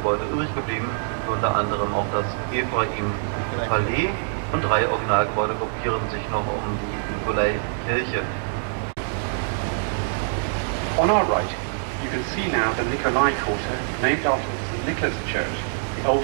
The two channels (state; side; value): silent; left; digital silence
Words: übrig geblieben, unter anderem auch das Ephraim-Palais, und 3 Originalgebäude gruppieren sich noch um die Nikolaikirche. On our right, you can see now the Nikolai Quarter, named after the St. Nicholas Church, the